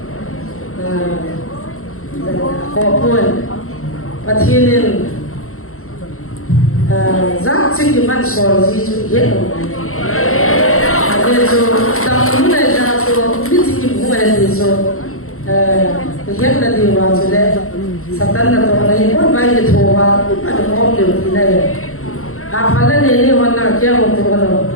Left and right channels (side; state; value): right; late; 0.62 ms